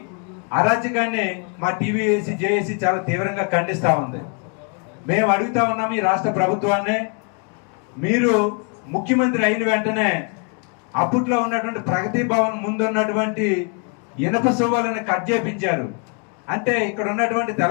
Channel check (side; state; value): right; quieter; 38.5 dB